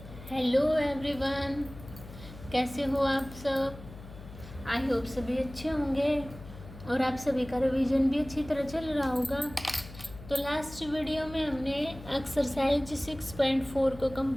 Hello everyone, कैसे हो आप सब। आई होप सभी अच्छे होंगे और आप सभी का रिवीजन भी अच्छी तरह चल रहा होगा। तो लास्ट वीडियो में हमने एक्सरसाइज 6.4 को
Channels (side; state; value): left; noise; hum, 16 dB below the sound